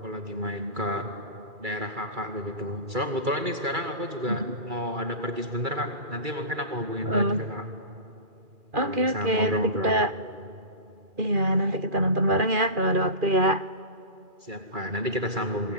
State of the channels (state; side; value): late; left; 2.3 ms